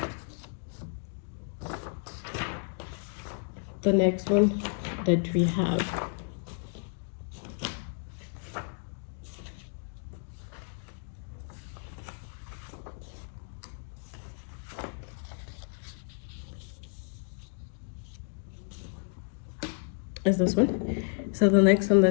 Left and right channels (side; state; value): right; silent; 57 dB below the other